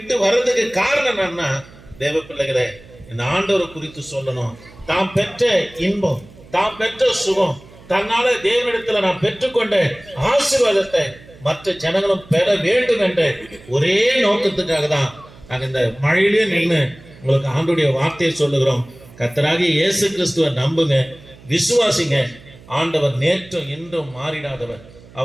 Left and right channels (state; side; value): noise; right; hum, 22 dB below the sound